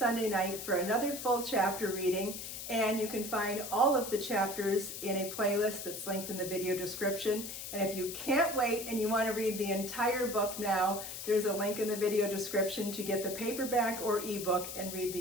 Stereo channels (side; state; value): left; noise; hiss, 8 dB below the sound